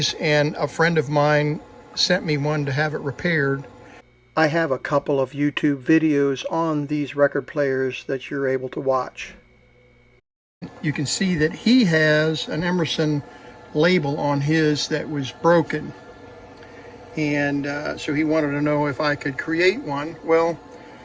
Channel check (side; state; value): both; identical; correlation 1.00